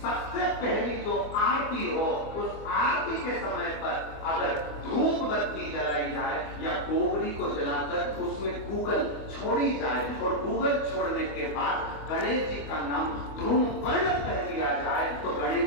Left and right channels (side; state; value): right; late; 24 ms